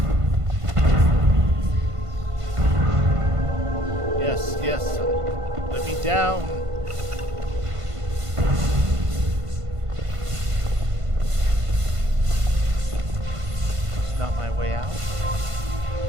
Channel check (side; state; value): left; late; 1.5 ms